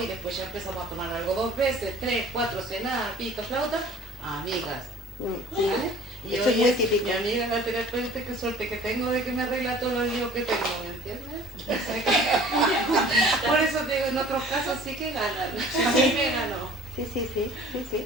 y después ya empezamos a tomar algo 2 veces, 3, 4, cenar, pito, flauta, amigas. ¿Vale? Y eso hoy es muy es típico. mi amiga la terapeuta, qué suerte que tengo de que me arregla todo el lío que tengo, ¿me entiendes? Por eso te digo, en otros casos sí que ganan, a mí me ganó. Sí, es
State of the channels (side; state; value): both; normal; correlation 0.49